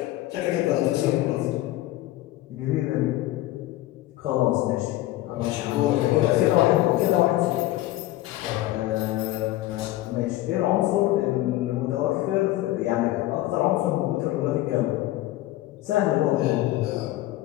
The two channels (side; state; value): right; quieter; 16.1 dB